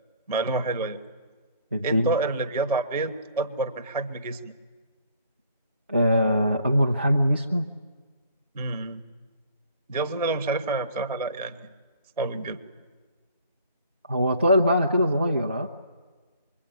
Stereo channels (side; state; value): both; inverted; correlation -0.57